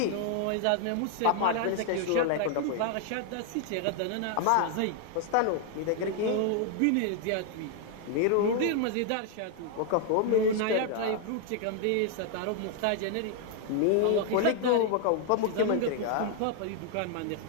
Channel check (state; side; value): different; both; correlation 0.00